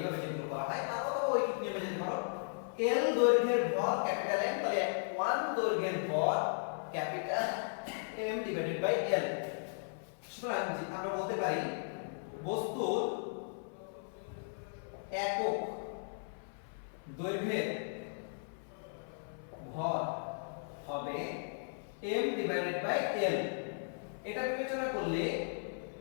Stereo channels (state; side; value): silent; right; 54 dB below the other